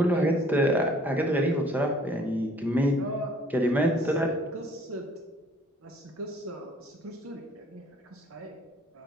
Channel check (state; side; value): normal; both; correlation 0.57